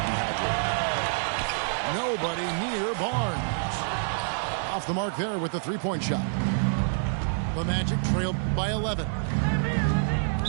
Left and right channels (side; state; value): left; silent; digital silence